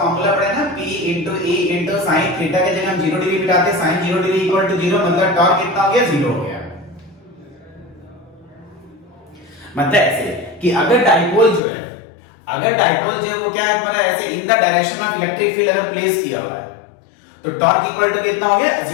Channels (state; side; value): drops out; right; at 11.6 s